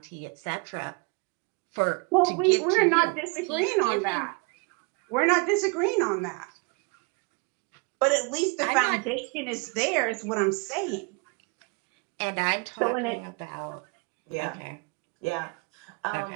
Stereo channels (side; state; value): left; quieter; 31.6 dB